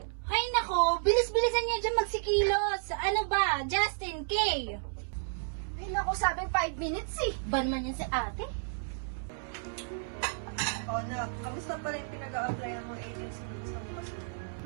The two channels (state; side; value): silent; left; 56 dB below the other